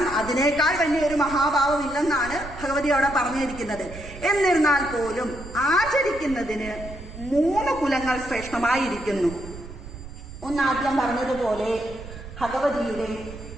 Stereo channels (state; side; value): noise; right; rumble, 13 dB below the sound